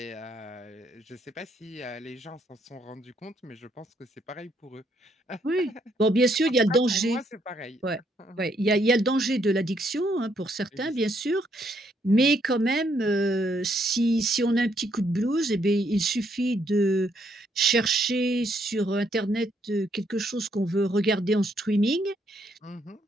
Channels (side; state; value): both; normal; correlation 0.72